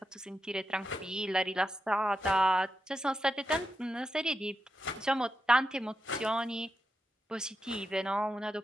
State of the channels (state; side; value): normal; both; correlation 0.87